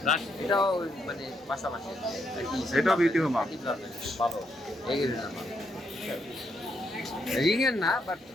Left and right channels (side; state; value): both; normal; correlation 0.77